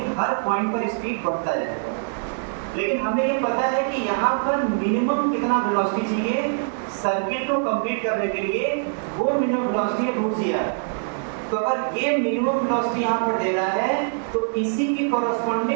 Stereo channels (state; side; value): silent; left; digital silence